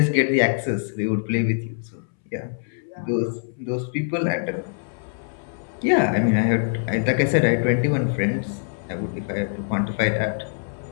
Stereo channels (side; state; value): right; silent; 63 dB below the other